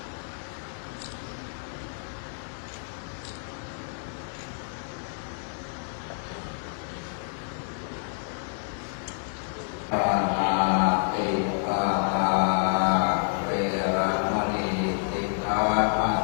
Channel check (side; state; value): right; silent; 59 dB below the other